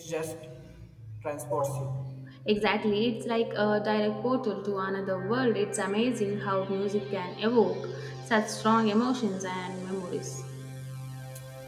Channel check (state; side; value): identical; both; correlation 1.00